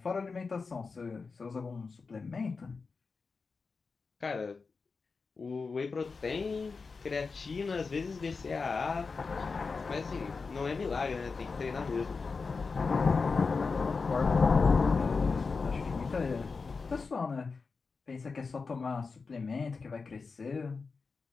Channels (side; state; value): right; quieter; 4.6 dB